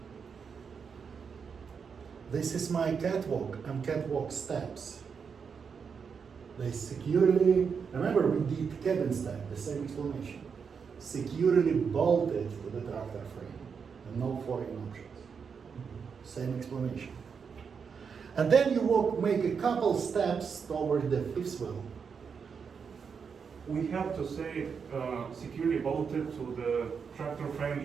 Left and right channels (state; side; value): quieter; left; 6.2 dB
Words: This is my catwalk and catwalk steps. They securely, remember we did cabin step, the same explanation. Securely bolted to the tractor frame and no foreign options. Same explanation. And then you make a couple steps toward the fifth wheel. we have to say securely bolted to the tractor frame